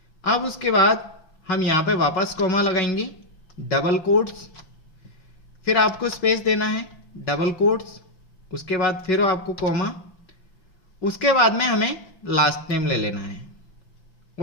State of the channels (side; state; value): right; late; 5.4 ms